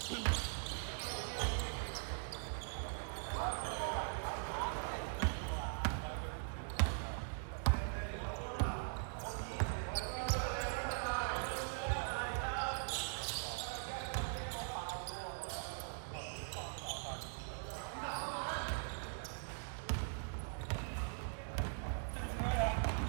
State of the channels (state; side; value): silent; left; digital silence